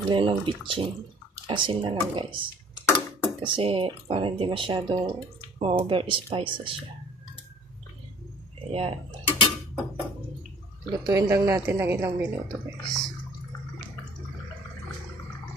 ng bitchin. Asin na lang guys. Kasi para hindi masyadong ma-over spices siya. Ayan. Lutuin lang natin ng ilang minuto guys.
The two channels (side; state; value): both; normal; correlation 0.52